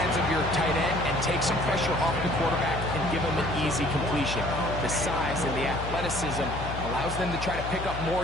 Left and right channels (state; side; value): noise; left; hum, 7 dB below the sound